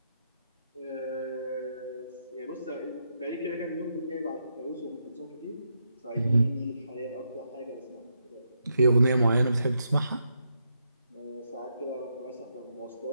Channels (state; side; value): inverted; both; correlation -0.81